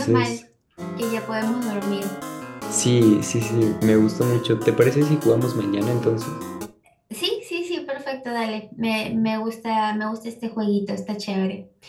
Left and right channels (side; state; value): both; identical; correlation 1.00